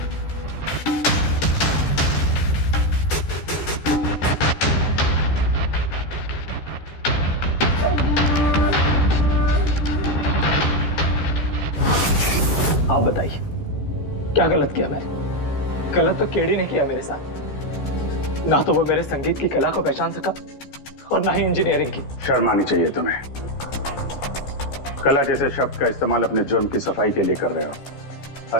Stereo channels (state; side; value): late; right; 14 ms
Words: आप बताइए, क्या गलत किया मैंने? गलत तो केडी ने किया मेरे साथ। ना तो वो मेरे संगीत की कला को पहचान सका और ना ही इंजीनियरिंग की। शर्म आनी चाहिए तुम्हें। कला जैसे शब्द का इस्तेमाल अपने जुर्म की सफाई के लिए कर रहे हो।